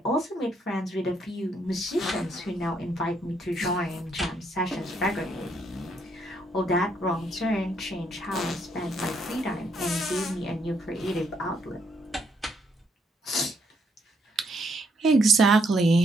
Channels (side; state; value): both; normal; correlation 0.72